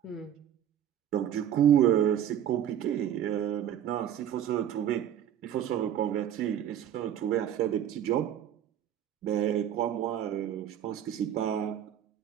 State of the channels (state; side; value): quieter; left; 10.2 dB